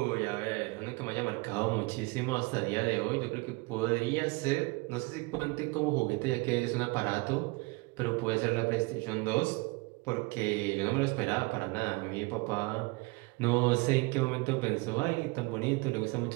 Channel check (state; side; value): quieter; left; 26.4 dB